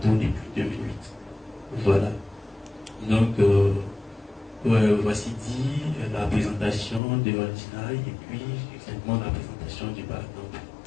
depuis 2008. Voilà. Donc, voici dit la présentation de Altinaï et puis exactement la présentation du Barcamp.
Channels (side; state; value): right; drops out; at 7.0 s